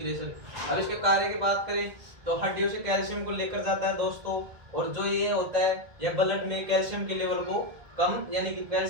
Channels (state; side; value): late; left; 1.8 ms